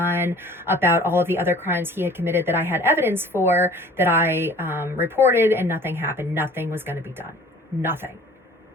about all of the other crimes he had committed that I had evidence for, that I reported, and nothing happened. Nothing was going to be done. Nothing.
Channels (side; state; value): both; normal; correlation 0.48